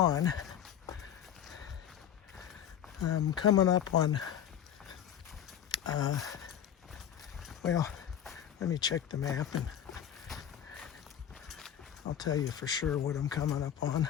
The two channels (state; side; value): quieter; right; 9.7 dB